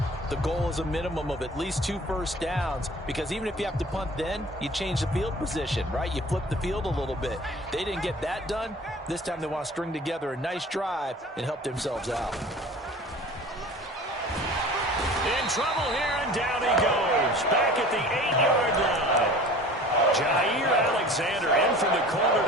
the goal is a minimum of at least 2 first downs, because even if you have to punt then, you change the field position, right? You flip the field a little bit. They didn't get that done. This time they want to string together a nice drive and help themselves out. In trouble here, and down he goes. Back at the 8-yard line. Jair Alexander in from the corner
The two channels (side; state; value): both; normal; correlation 0.43